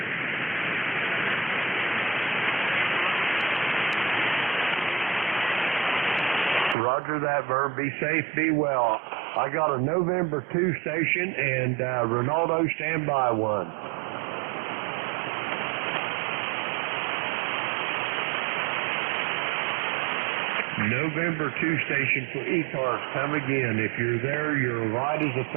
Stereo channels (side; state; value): left; drops out; at 6.8 s